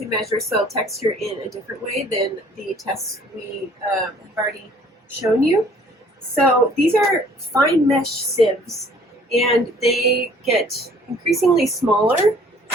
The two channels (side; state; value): both; normal; correlation 0.56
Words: measure soil texture in a different way than the tests we have already shown you. So these are fine mesh sieves, and they get increasingly smaller.